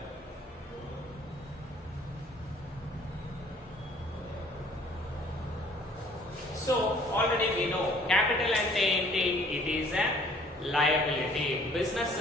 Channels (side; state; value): both; normal; correlation 0.56